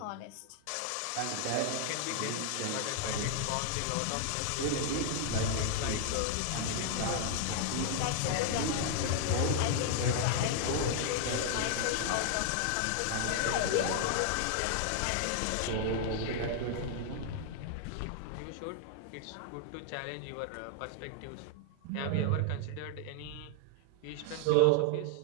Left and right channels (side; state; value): both; different; correlation 0.00